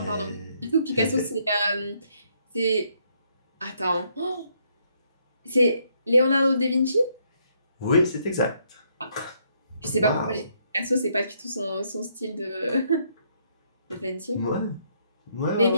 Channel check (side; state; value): both; inverted; correlation -0.72